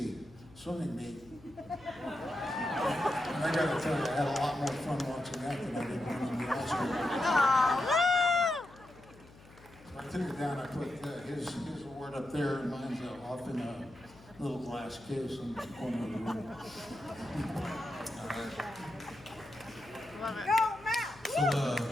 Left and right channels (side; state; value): left; noise; hum, 23 dB below the sound